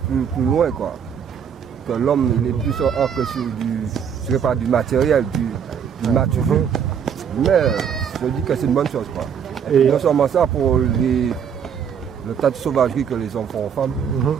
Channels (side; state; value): left; quieter; 7.6 dB